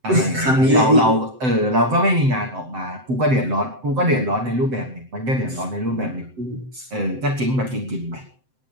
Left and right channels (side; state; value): left; late; 7.8 ms